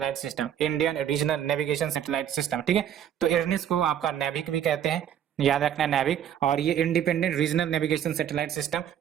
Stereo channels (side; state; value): left; quieter; 9.8 dB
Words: system, Indian regional navigation satellite system, ठीक है। तो IRNIS को आपका नेविक भी कहते हैं, याद रखना है नेविक। और ये independent regional navigation satellite system